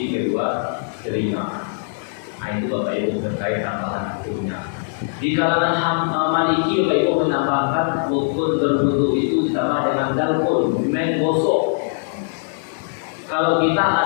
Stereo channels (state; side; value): silent; right; 64 dB below the other